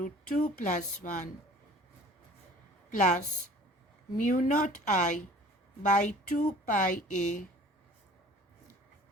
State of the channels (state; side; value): normal; both; correlation 0.48